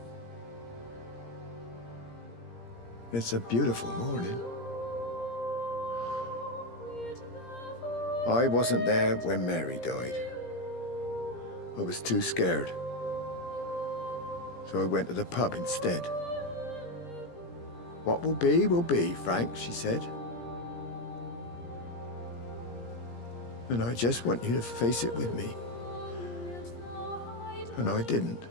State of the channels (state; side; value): late; right; 17 ms